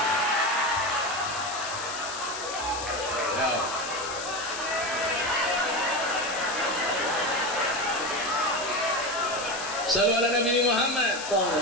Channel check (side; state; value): left; noise; hiss, 8 dB below the sound